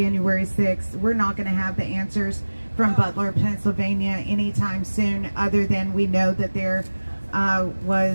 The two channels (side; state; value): both; inverted; correlation -1.00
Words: 6th. We're not going to have the answers from Butler, Pennsylvania anytime soon, other than we know that there